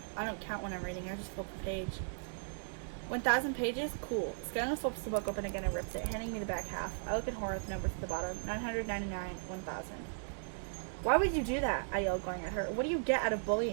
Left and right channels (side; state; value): left; silent; digital silence